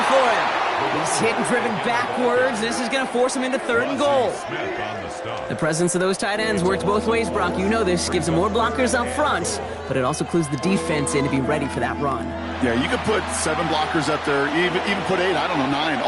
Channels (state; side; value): identical; both; correlation 1.00